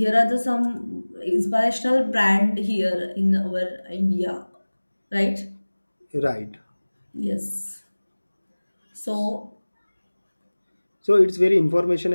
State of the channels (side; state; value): both; inverted; correlation -1.00